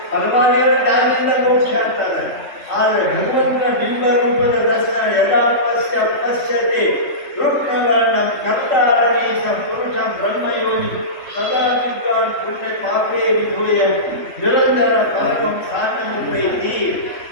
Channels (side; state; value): right; late; 3.8 ms